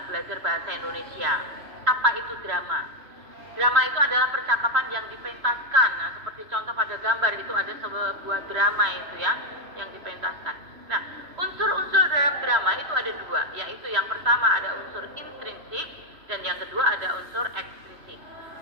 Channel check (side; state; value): left; late; 3.0 ms